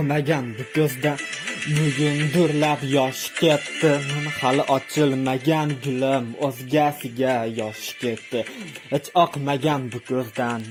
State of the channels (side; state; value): both; identical; correlation 1.00